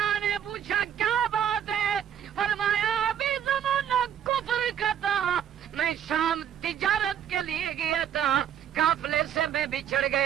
نے پوچھا کیا بات ہے؟ فرمایا ابھی زمانہ کفر کا تھا، میں شام تجارت کے لیے گیا تھا، قافلے سے میں بچھڑ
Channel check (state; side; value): quieter; left; 9.5 dB